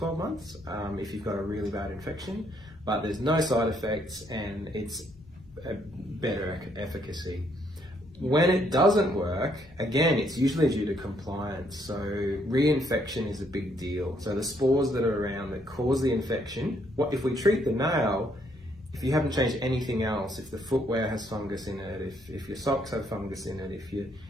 months if you've got a really bad infection, but there's no side effects and it's a better efficacy. When it doesn't work, again, it's usually due to compliance. So reinfection is a big deal. So the spores that are around that cause the infection, what if we treat the nail, if you haven't changed anything else, if the footwear has fungus in it, if your socks have fungus in it, if you've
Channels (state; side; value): normal; both; correlation 0.70